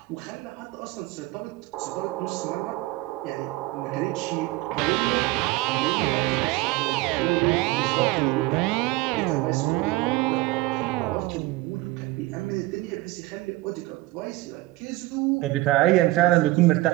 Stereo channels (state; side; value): quieter; left; 19.4 dB